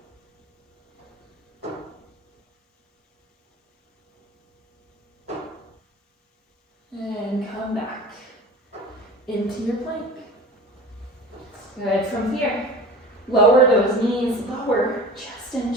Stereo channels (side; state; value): both; normal; correlation 0.37